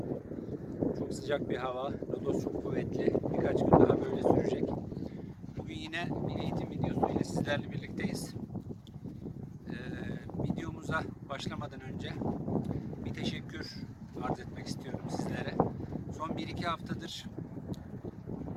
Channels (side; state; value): both; identical; correlation 1.00